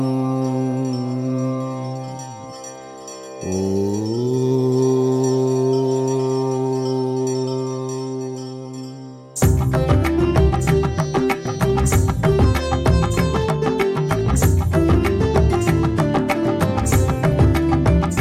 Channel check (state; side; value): identical; both; correlation 1.00